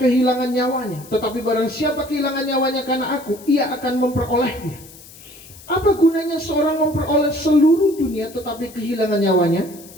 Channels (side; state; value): left; noise; hiss, 20 dB below the sound